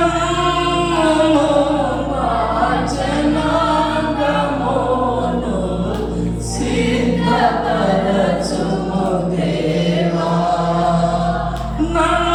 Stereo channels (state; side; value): identical; both; correlation 1.00